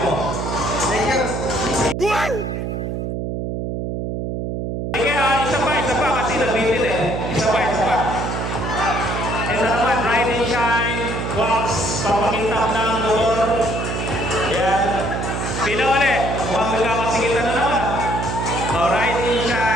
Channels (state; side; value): noise; right; hum, 3 dB below the sound